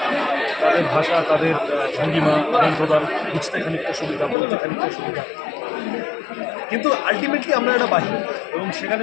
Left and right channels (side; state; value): right; drops out; at 4.4 s